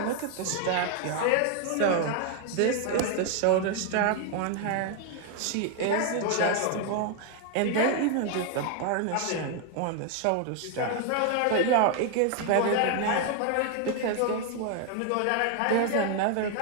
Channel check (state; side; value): different; both; correlation 0.00